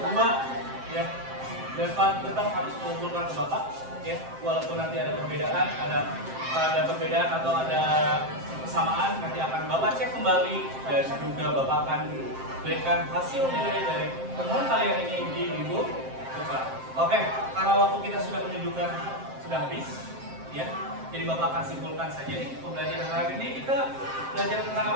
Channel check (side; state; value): left; late; 7.6 ms